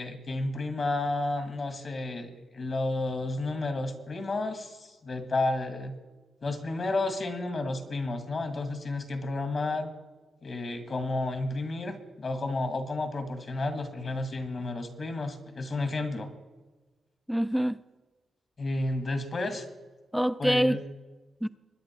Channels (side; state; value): both; normal; correlation 0.91